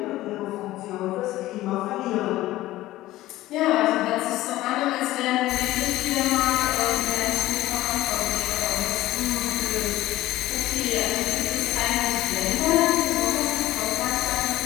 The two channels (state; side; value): quieter; right; 16.2 dB